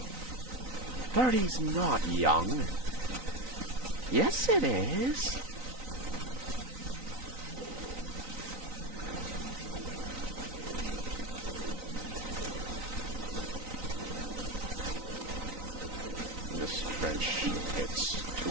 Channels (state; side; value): late; left; 3.9 ms